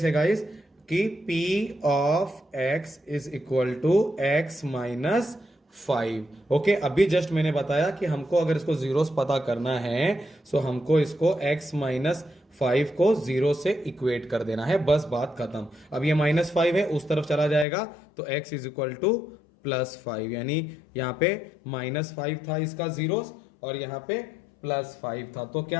है गाइस कि P of x is equal to x minus 5। Okay, अभी जस्ट मैंने बताया कि हमको अगर इसको जीरोस पता करना है, सो हमको इसको x माइनस 5 को 0 से इक्वेट कर देना है, बस बात खत्म। अब ये -5 है, उस तरफ चला जाएगा तो x इज इक्वल टू +5, यानी यहाँ पे -5 था इसका जीरोस और यहाँ पे +5 था। तो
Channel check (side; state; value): right; drops out; at 17.7 s